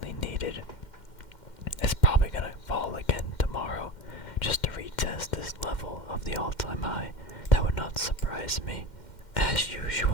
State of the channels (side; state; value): right; late; 2.1 ms